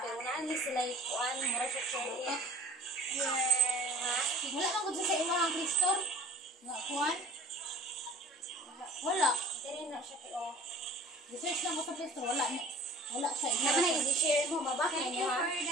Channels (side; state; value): both; normal; correlation 0.47